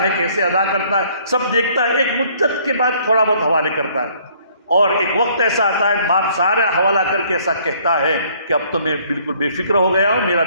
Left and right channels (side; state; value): both; inverted; correlation -0.61